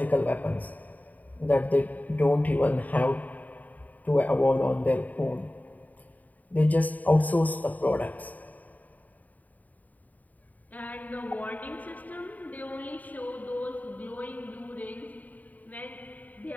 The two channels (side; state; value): right; late; 0.077 ms